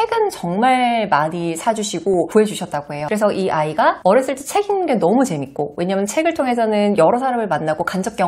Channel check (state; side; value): identical; both; correlation 1.00